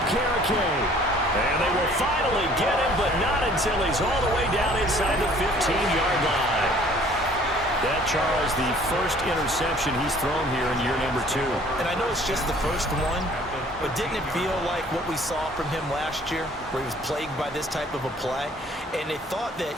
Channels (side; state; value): both; normal; correlation 0.55